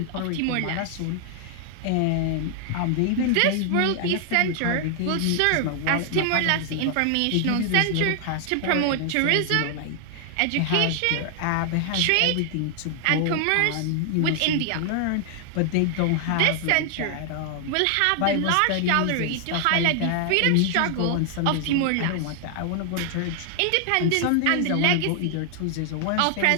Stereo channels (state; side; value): different; both; correlation 0.00